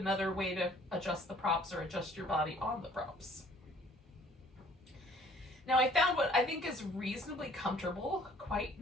way to adjust the props or adjust your body on the props. Now I found what I think is reasonably comfortable, quite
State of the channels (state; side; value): normal; both; correlation 0.56